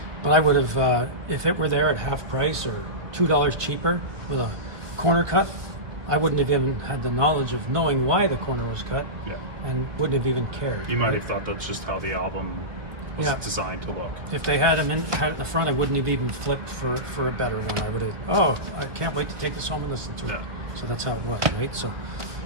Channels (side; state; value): left; late; 1.2 ms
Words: But I would have, if it were there at half price or $2 cheaper with a corner cut, I wouldn't have even had the knowledge of knowing why the corner was cut, Yeah. and wouldn't have even cared. You might right? have thought that's just how the album was Yeah. designed to look. If they had them had it in the front, I wouldn't have even flipped for a better one. I would have, I can't wait to take this home and listen to it. Yeah. So that's how it was, right? So,